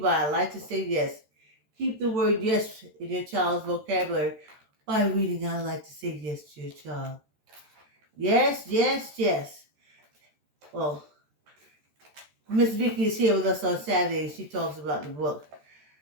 I Like to Say Yes. Keep the word yes in your child's vocabulary by reading I Like to Say Yes to your child. Yes, yes, yes. Well, Miss Vicky is here with us on Saturday and she talks about the book.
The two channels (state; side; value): late; left; 13 ms